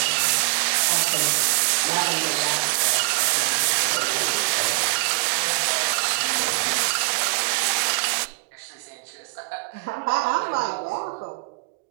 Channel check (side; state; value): left; quieter; 35.8 dB